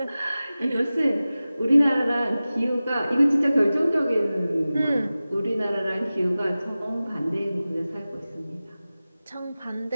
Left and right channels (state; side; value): inverted; both; correlation -0.96